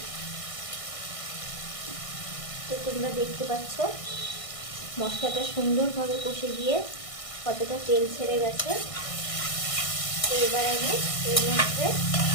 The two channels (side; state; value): right; late; 1.6 ms